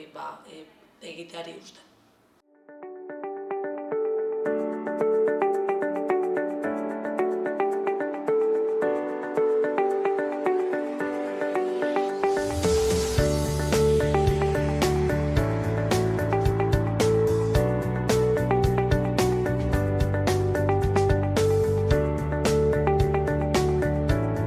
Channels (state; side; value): identical; both; correlation 1.00